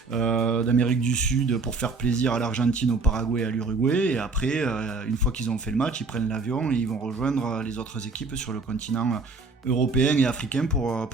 d'Amérique du Sud pour faire plaisir à l'Argentine, au Paraguay et à l'Uruguay. Et après, une fois qu'ils ont fait le match, ils prennent l'avion et ils vont rejoindre les autres équipes sur le continent européen et africain pour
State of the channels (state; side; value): quieter; left; 3.8 dB